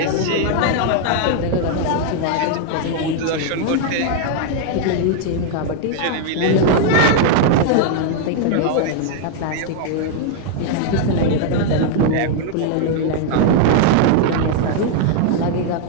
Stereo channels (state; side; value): different; both; correlation 0.00